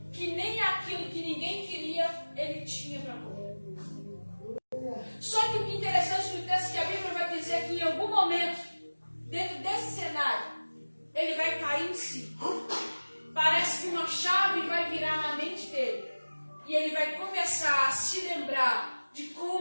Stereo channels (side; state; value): both; inverted; correlation -1.00